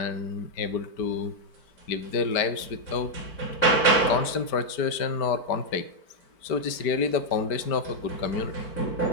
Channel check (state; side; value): late; right; 4.5 ms